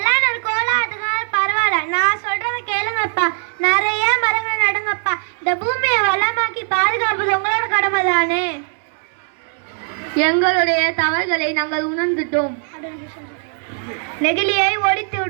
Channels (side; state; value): left; silent; 57 dB below the other